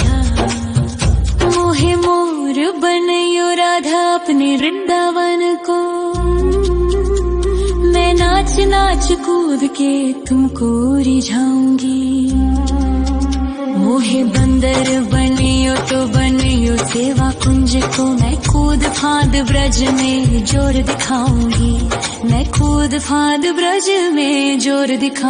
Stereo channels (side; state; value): both; identical; correlation 1.00